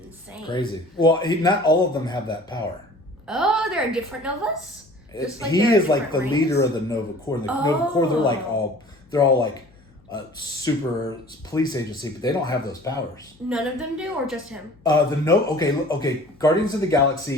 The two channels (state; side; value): noise; left; hum, 29 dB below the sound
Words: Crazy. Well, not all of them have that power. Oh, there are different Novas? He is like the leader of the Nova Corps. The Nova Corps, they're all like a super police agency, but they don't have those powers. None of them do, or just him? Okay. Guardians of the